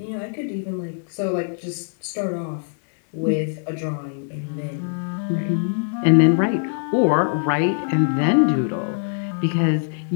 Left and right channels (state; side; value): silent; right; digital silence